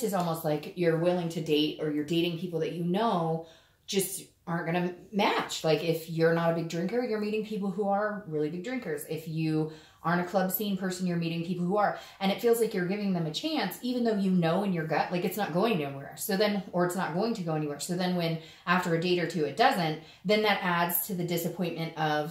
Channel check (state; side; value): identical; both; correlation 1.00